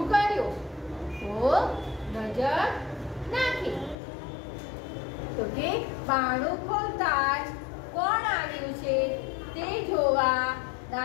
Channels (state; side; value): drops out; right; at 4.0 s